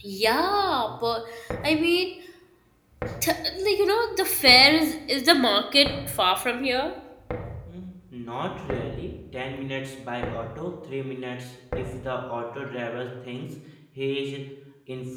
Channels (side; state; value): both; identical; correlation 1.00